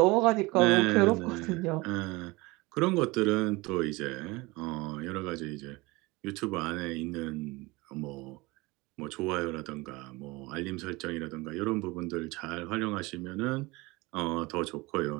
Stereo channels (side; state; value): left; quieter; 23.2 dB